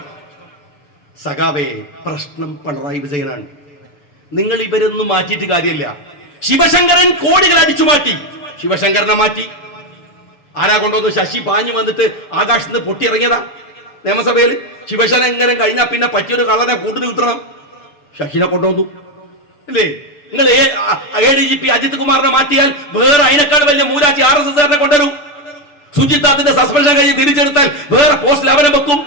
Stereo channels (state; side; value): late; right; 6.9 ms